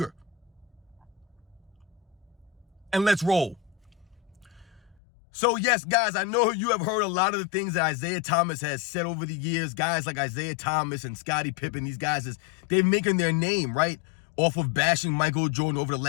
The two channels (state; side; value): drops out; right; at 5.0 s